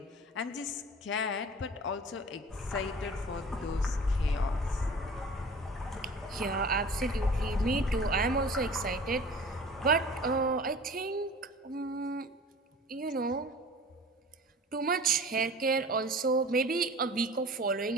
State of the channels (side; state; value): both; normal; correlation 0.42